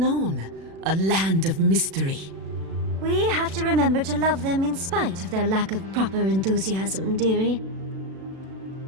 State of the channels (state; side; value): late; left; 36 ms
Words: a land of mystery. We have to remember to love them in spite of their lack of proper enthusiasm, dearie.